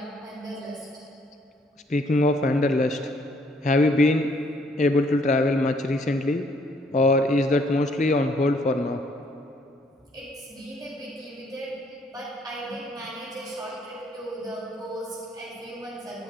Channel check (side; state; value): both; normal; correlation 0.66